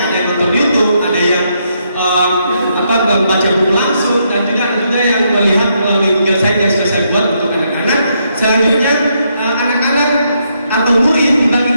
Ada yang nonton YouTube, ada yang membaca buku langsung, dan juga yang melihat melalui Google Sites yang sudah saya buat untuk anak-anak. Selanjutnya anak-anak atau murid dibagi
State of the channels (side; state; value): both; inverted; correlation -0.77